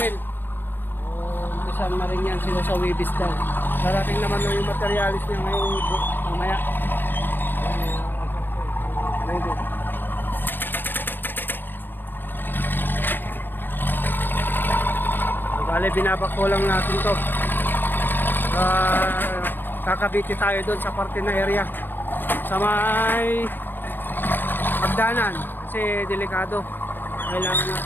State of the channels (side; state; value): right; late; 0.095 ms